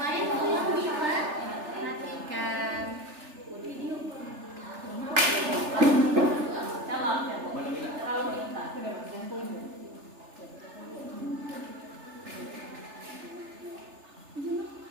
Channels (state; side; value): late; left; 3.3 ms